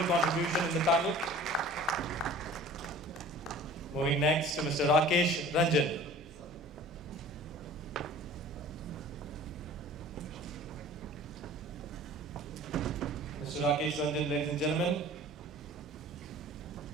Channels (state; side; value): normal; both; correlation 0.45